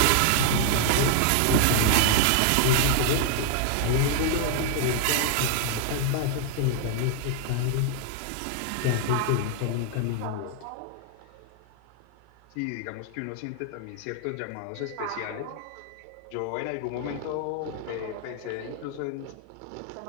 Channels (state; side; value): different; both; correlation 0.00